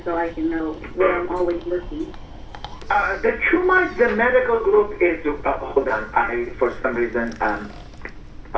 so I can know where I'm always looking. The TrueMind, the medical group is, hold on, for some reason,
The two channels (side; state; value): both; identical; correlation 1.00